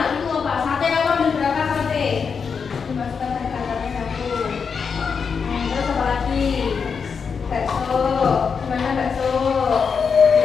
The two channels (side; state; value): right; quieter; 5.9 dB